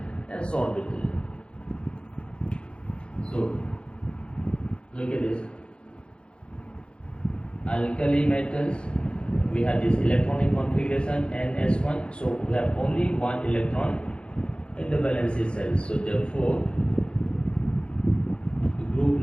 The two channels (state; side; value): late; right; 0.055 ms